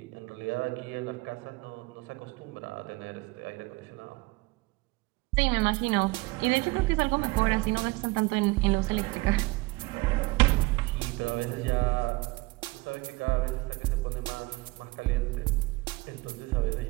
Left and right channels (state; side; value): quieter; left; 22.5 dB